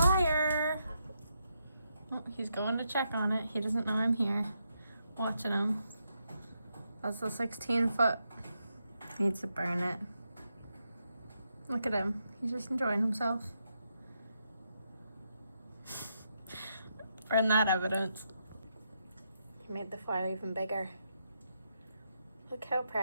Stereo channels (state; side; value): inverted; both; correlation -0.82